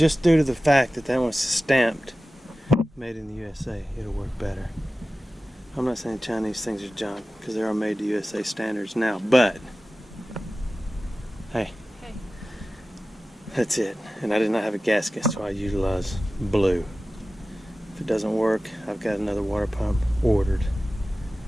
due to the fact that that one's stamped made in the USA, it'll work better. I'm not saying Chinese things are junk, because they are made to USA standards now, but hey, that's it. And I did not have a gasket, so I utilized blue. If it doesn't work, I've got another water pump ordered.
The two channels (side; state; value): both; normal; correlation 0.95